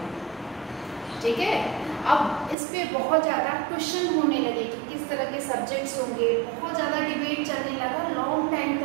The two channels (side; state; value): left; drops out; at 2.6 s